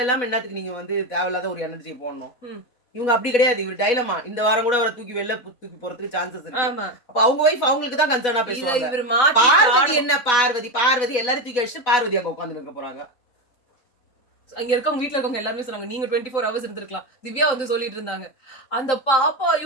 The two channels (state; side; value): late; right; 4.1 ms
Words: என்னத்துக்கு நீங்க வந்து தேவையில்லாத ஒரு எனர்ஜி போடணும்? இவங்க அப்படி கிடையாது. இவர் டைலமா இந்த வாரம் கூட அவரை தூக்கி வெளில தூக்கி போறதுக்கு சான்சஸ் இருக்கு. ஆமா அப்ப அவங்க ஒய்ஃப் அவங்களுக்கு தான் கன்சர்னா இத பேசுவாங்க. இவர் மாத்தி பார்வதி என்ன பார்வதி எல்லாரும் தூக்கி அடிச்சுட்டு பார்வதி அங்க உட்கார்ந்து இருக்க போறாங்க. அங்க இருக்கவங்க வீட்ல இருக்கவங்க எல்லாருமே சொன்னாங்க நீங்க 24 ஹவர்ஸ் இருந்திருக்கலாம். திவ்யா வந்து சொல்லிட்டு இருந்தாங்க அந்த பாப்பா